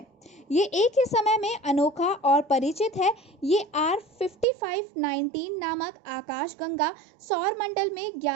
ये एक ही समय में अनोखा और परिचित है। ये R5519 नामक आकाशगंगा सौरमंडल में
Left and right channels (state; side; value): drops out; left; at 4.5 s